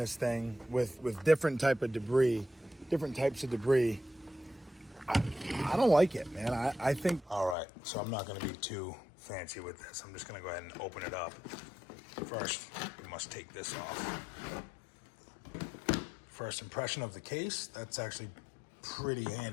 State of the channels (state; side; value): drops out; right; at 7.6 s